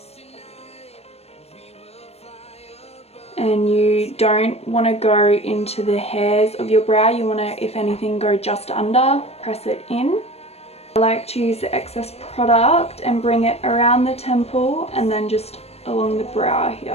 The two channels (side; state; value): right; late; 0.30 ms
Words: And you don't want to go into the hairs of your brow, you want to, if anything, go just under, press it in. I like to use the excess product and bring it around the temple and then just along the brow here.